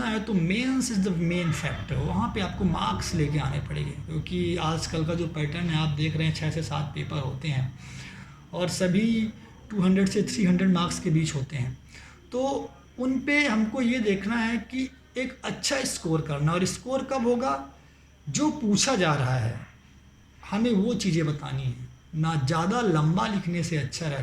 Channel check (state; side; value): identical; both; correlation 1.00